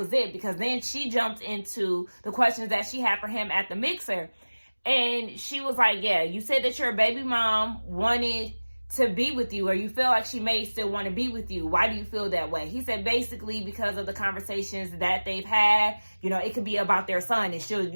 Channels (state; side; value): inverted; both; correlation -1.00